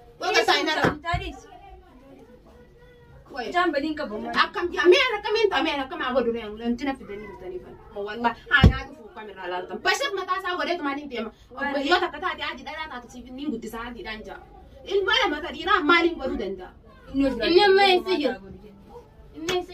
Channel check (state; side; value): identical; both; correlation 1.00